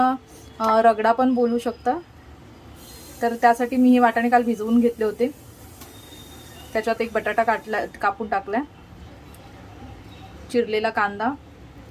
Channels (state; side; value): identical; both; correlation 1.00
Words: रगडा पण बोलू शकता. तर त्यासाठी मी हे वाटाणे काल भिजवून घेतले होते. त्याच्यात एक बटाटा कापून टाकला, चिरलेला कांदा,